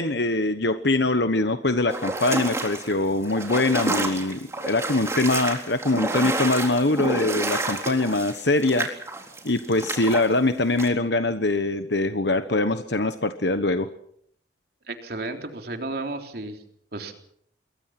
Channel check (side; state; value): both; normal; correlation 0.20